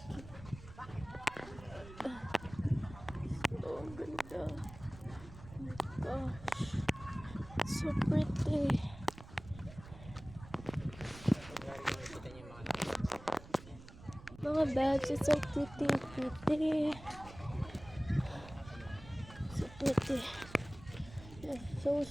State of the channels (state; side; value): noise; right; rumble, 16 dB below the sound